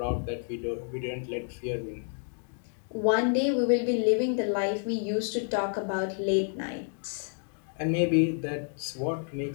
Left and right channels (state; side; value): silent; right; 55 dB below the other